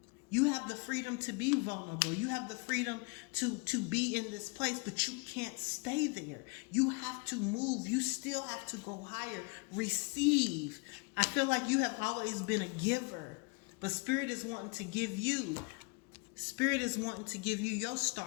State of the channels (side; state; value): right; quieter; 30.1 dB